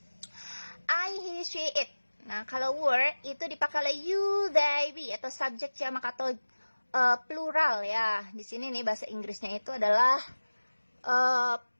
I, he, she, it. Nah, kalau were itu dipakai oleh you, they, we atau subjek jamak atau plural ya. Di sini nih bahasa Inggrisnya itu adalah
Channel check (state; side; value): inverted; both; correlation -1.00